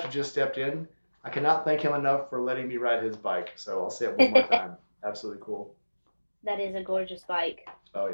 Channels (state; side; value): inverted; both; correlation -1.00